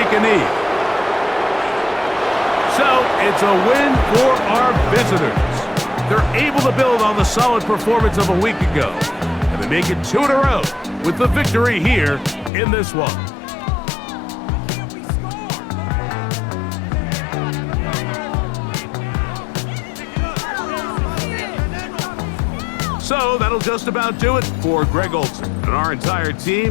a knee. So it's a win for our visitors. They're able to build on the solid performance of a week ago. And they make it 2 in a row with the victory here in this one. So that'll just about do it for Greg Olson and our entire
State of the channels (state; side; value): drops out; right; at 12.5 s